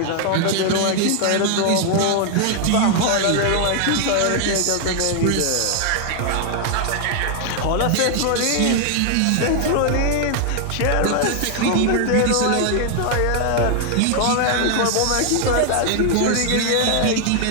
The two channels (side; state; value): both; different; correlation 0.00